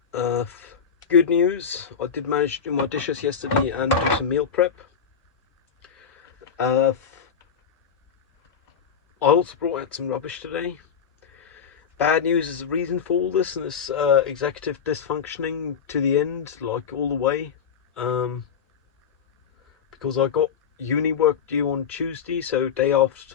Good news, I did manage to do my dishes yesterday and do some meal prep. I also brought out some rubbish today. Bad news is the reason for all this, and this executive dysfunctioning to the end, like all the way. Because I got uni work due on Tuesday, so day after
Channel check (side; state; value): right; quieter; 7.0 dB